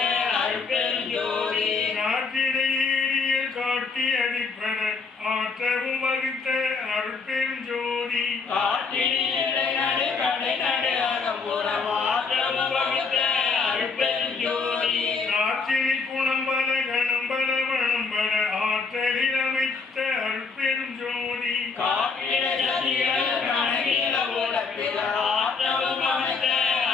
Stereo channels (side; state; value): right; quieter; 4.8 dB